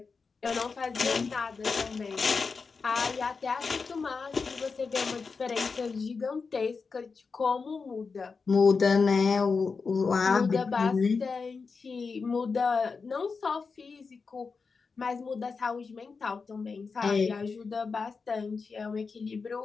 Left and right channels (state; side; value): quieter; right; 4.8 dB